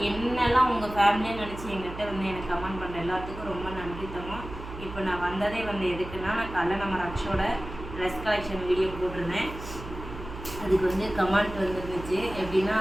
என்னெல்லாம் உங்கள் ஃபேமிலியாக நினச்சி எங்கிட்ட வந்து எனக்கு கமெண்ட் பண்ணுற எல்லாத்துக்கும் ரொம்ப நன்றி தங்கம். இப்போ நான் வந்ததே வந்து எதுக்குன்னா, நான் காலைல நம்ம ரக்ஷோட ட்ரெஸ் கலெக்ஷன் வீடியோ போட்டிருந்தேன். அதுக்கு வந்து கமெண்ட் வந்துருந்துச்சு. எப்படின்னா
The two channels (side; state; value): right; noise; hum, 11 dB below the sound